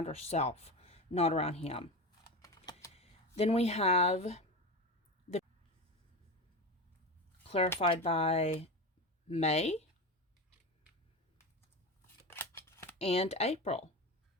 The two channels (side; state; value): both; normal; correlation 0.23